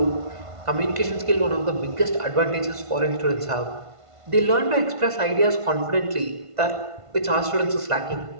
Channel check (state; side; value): late; left; 1.5 ms